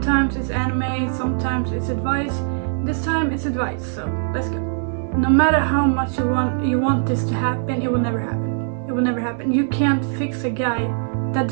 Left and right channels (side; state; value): left; silent; 65 dB below the other